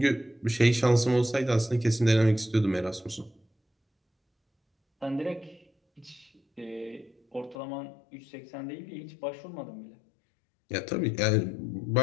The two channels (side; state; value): right; drops out; at 7.6 s